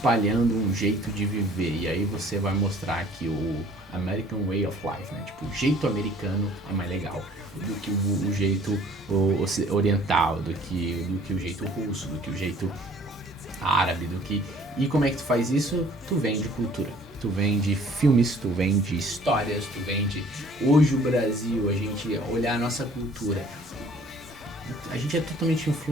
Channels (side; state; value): both; normal; correlation 0.55